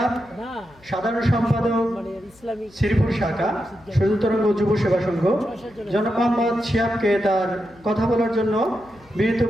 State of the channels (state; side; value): noise; left; hum, 28 dB below the sound